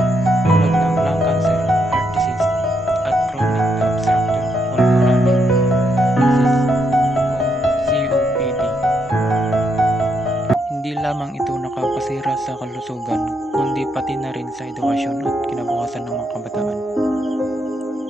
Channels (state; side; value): normal; both; correlation 0.78